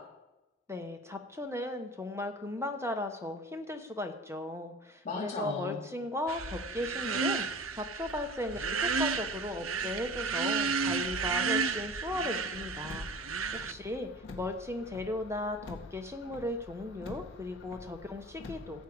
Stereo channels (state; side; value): normal; both; correlation 0.39